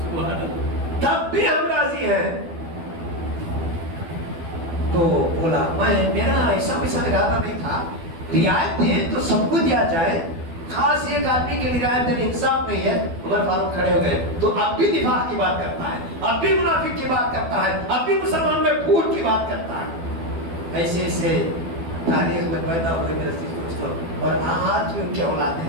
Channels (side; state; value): left; late; 12 ms